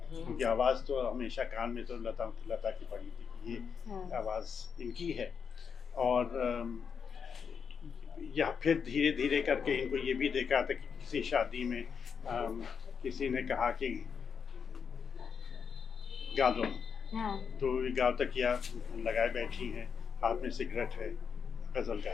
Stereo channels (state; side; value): quieter; right; 6.5 dB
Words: क्योंकि आवाज़ तो हमेशा कान में तो लता की पड़ी थी, ये आवाज़ इनकी है। और या फिर धीरे धीरे करके इनको ये भी देखा था कि किसी शादी में किसी ने कहा कि गा दो, तो ये गाँव तक या लगाए बैठी हैं, हाथ में सिगरेट है, गज़ल